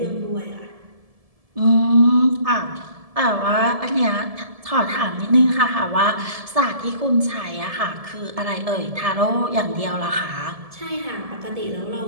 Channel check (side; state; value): left; late; 1.7 ms